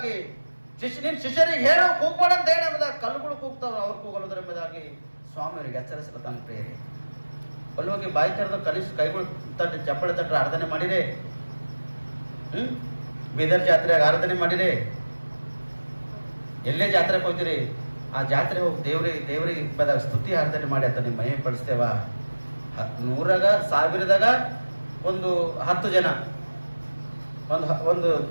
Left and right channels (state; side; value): inverted; both; correlation -1.00